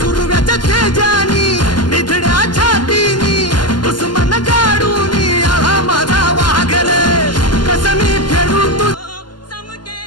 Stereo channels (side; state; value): right; late; 0.71 ms